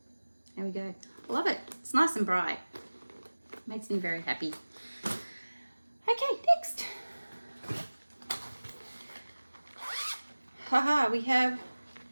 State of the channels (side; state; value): both; inverted; correlation -1.00